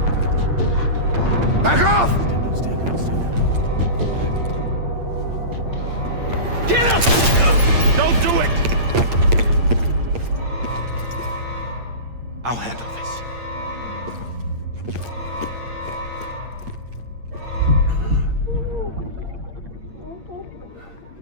Back off! Get up! Don't do it! I'll handle this.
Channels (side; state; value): left; late; 8.7 ms